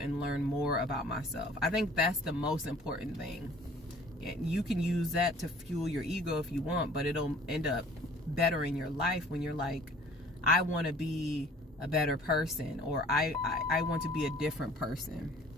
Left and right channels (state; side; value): normal; both; correlation 0.51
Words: learned more about myself. I think that's the most important thing. And you can use that to fuel your ego if you want, but it'll end up bettering your life when you're like, I want to be a better person, or I want to be a different person.